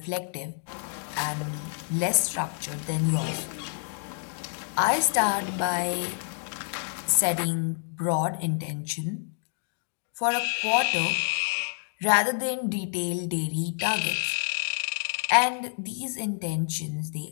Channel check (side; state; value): right; silent; 59 dB below the other